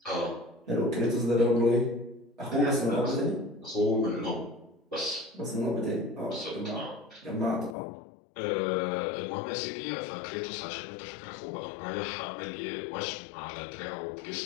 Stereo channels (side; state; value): right; drops out; at 7.8 s